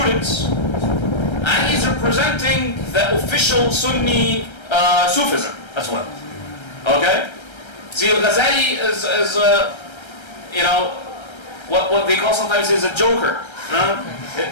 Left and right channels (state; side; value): late; right; 1.3 ms